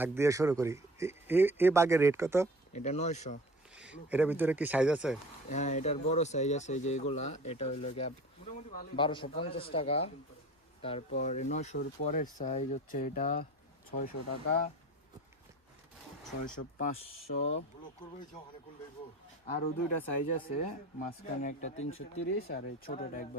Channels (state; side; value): normal; both; correlation 0.41